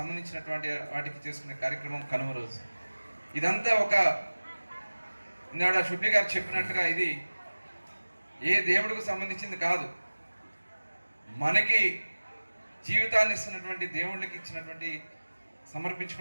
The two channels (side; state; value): both; inverted; correlation -1.00